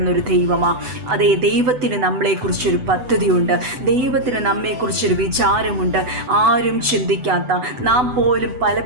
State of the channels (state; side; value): late; left; 8.0 ms